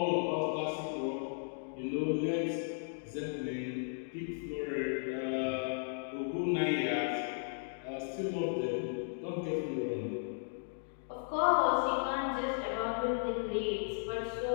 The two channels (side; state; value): right; silent; digital silence